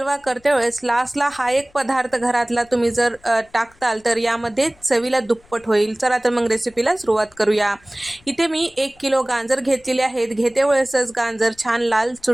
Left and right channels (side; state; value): left; noise; rumble, 30 dB below the sound